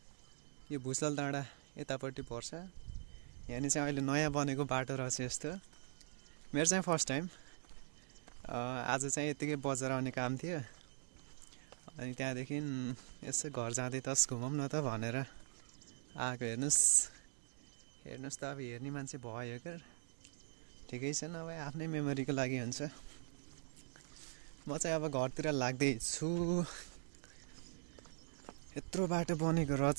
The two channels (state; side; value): silent; left; digital silence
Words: यो भुसाल डाँडा यतापट्टि पर्छ। यहाँनिर चाहिँ अहिले नयाँ बनेको बाटो रहेछ यस्तो। मेरो चाहिँ फर्स्ट टाइम। आज चाहिँ यतिकै बजार आउने काम थियो, अनि त्यहाँदेखि यसो घर जाँदै तस घुमौँ न त भनेर आएको। हेर्नुहोस् त, अब हेर्ने मान्छे भयो क्या, ठिकै छ। नभए आफ्नै मेमोरीको लागि हुन्छ। म चाहिँ अब घरतिर लाग्दैछु। यत्रो बाटो बनेको